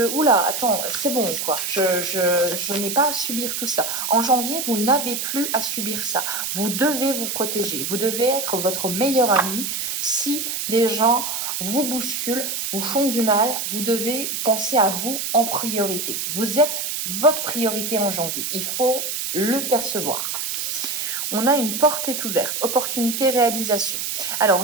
« Oula, attends, c'est bon, quoi. Je n'ai pas à subir tout ça. » En janvier, vous n'avez plus à subir ça. Vous devez vous protéger. Vous devez être votre meilleur ami. Si des gens vous bousculent, vous font du mal, vous devez penser à vous en priorité. Vous êtes votre priorité en janvier. Il faut le percevoir. On a une porte est ouverte, opportunité, réalisation. Alors,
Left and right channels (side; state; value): right; noise; hiss, 3 dB below the sound